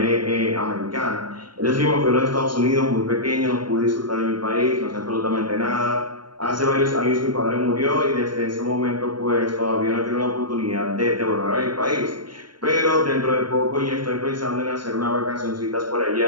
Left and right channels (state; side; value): late; left; 0.72 ms